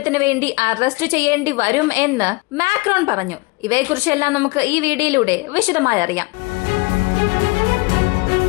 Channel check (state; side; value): quieter; right; 26.3 dB